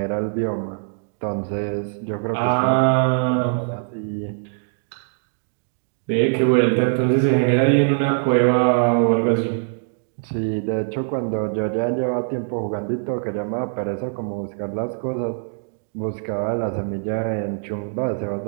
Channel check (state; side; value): silent; left; digital silence